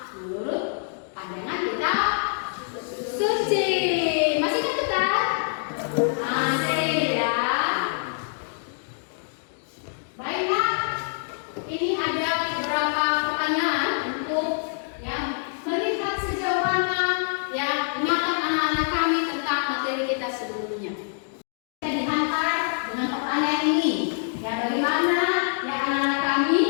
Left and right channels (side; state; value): right; silent; digital silence